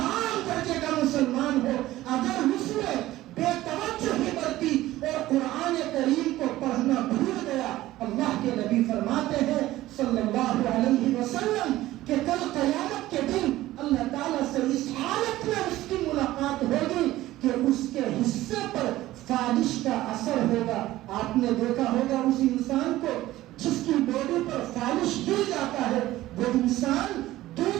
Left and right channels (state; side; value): quieter; left; 15.9 dB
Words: درجے کا مسلمان ہو، اگر اس نے بے توجہی برتی اور قرآن کریم کو پڑھنا بھول گیا، اللہ کے نبی فرماتے ہیں صلی اللہ علیہ وسلم کہ کل قیامت کے دن اللہ تعالیٰ سے اس حالت میں اس کی ملاقات ہوگی کہ اس کے حصے پر فالش کا اثر ہوگا۔ آپ نے دیکھا ہوگا اس انسان کو جس کی باڈی پر فالش گر جاتا ہے، وہ انسان